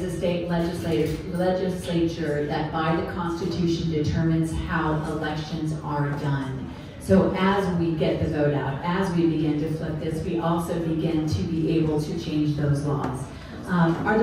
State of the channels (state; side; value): identical; both; correlation 1.00